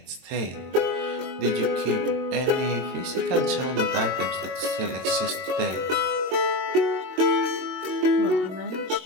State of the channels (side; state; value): left; late; 22 ms